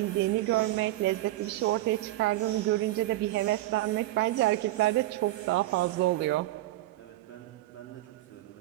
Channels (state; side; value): quieter; left; 16.5 dB